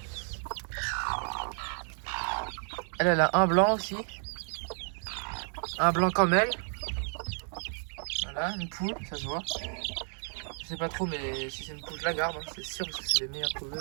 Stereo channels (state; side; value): silent; left; 57 dB below the other